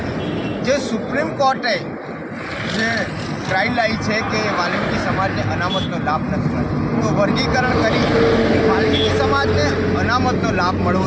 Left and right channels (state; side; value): identical; both; correlation 1.00